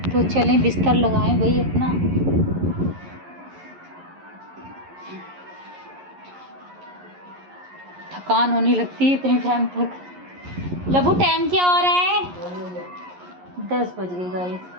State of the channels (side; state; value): left; late; 11 ms